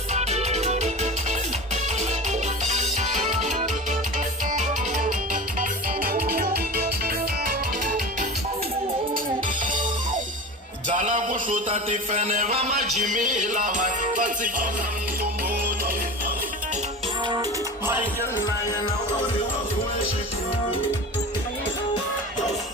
Jala bushuta tifene vama jimi lava Patsikona mkumbuti Michael Laya na uli wakueshiku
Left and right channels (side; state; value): both; normal; correlation 0.31